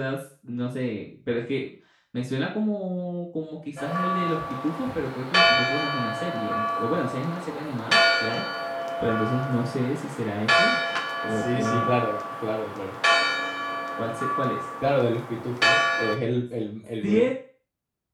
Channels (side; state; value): both; identical; correlation 1.00